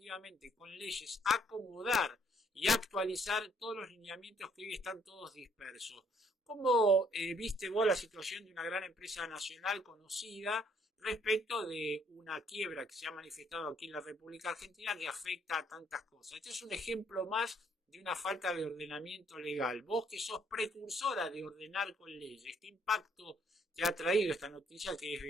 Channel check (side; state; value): both; normal; correlation 0.66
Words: con leyes, acomodar y actualizar todos los lineamientos que hoy están todos dispersos. ¿Cómo viste vos la situación de una gran empresa nacional conocida respecto de una quiebra que se ha manifestado aquí en la República Argentina que afecta a tantas cosas? Este es un ejemplo más de una falta de ordenamiento legal. Vos que sos precursora de ordenar con leyes, ¿qué impacto te ha traído esta noticia que es